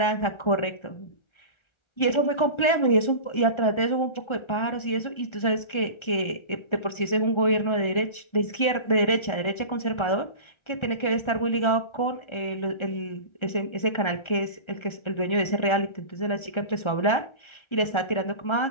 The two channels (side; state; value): right; late; 1.4 ms